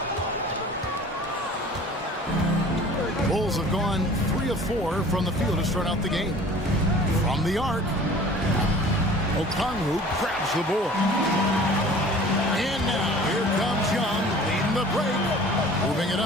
Bulls have gone 3 of 4 from the field to start out the game. From the arc, Okongwu grabs the board. And now here comes Young leading the break. Moving it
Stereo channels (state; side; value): normal; both; correlation 0.46